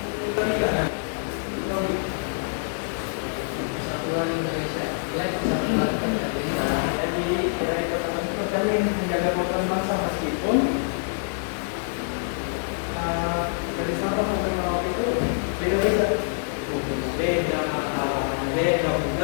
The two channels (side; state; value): right; silent; 55 dB below the other